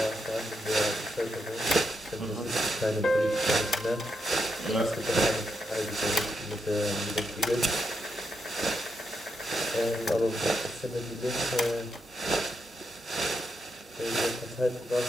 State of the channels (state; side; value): normal; both; correlation 0.83